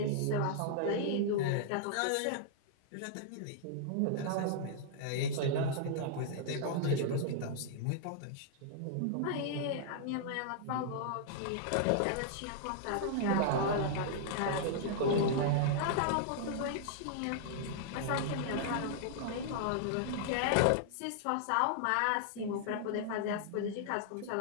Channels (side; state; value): both; different; correlation -0.01